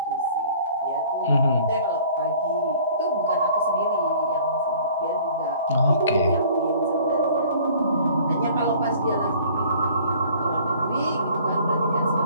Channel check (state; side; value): inverted; both; correlation -0.52